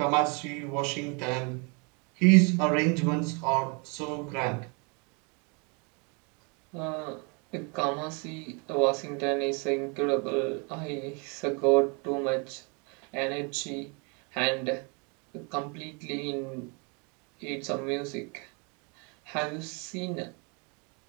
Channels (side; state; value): left; quieter; 33.2 dB